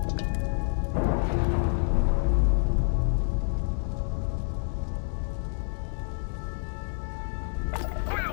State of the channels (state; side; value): silent; right; 59 dB below the other